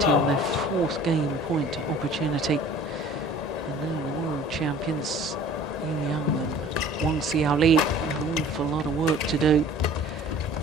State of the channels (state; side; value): normal; both; correlation 0.47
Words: on their 4th game point opportunity. And now the world champions Young and Wang Xiaoli, an awful lot of work to do.